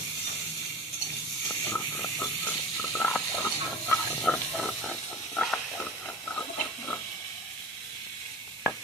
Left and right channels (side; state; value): both; normal; correlation 0.37